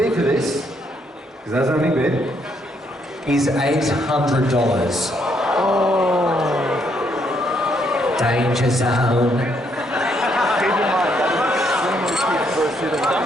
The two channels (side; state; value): both; normal; correlation 0.73